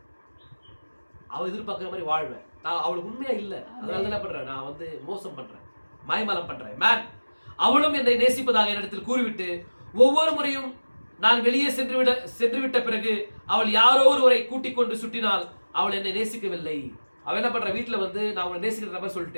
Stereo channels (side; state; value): both; inverted; correlation -1.00